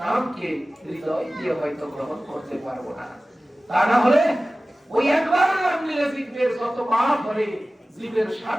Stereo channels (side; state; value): both; normal; correlation 0.97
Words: নামকে হৃদয় দিয়ে হয়তো গ্রহণ করতে পারবো না। তা না হলে ওই একবার নাম নিলে জীবের যত পাপ করে, জীবের